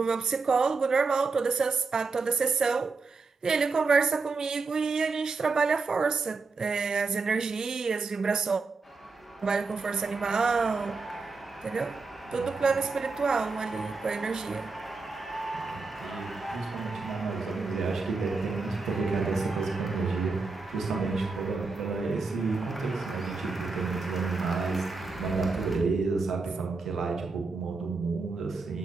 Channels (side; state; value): left; quieter; 4.2 dB